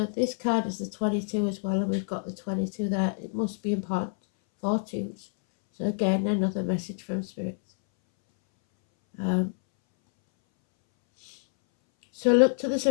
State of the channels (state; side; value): silent; right; 60 dB below the other